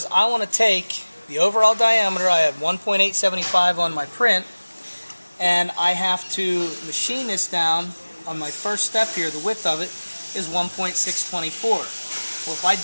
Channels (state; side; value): inverted; both; correlation -1.00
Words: I want to take the overall diameter. I had 1.875 on my print, and I have to machine this down on my first step here. The width of it is 1.624. Well, if I